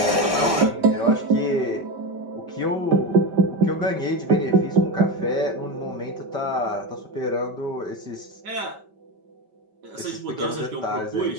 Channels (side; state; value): left; late; 5.1 ms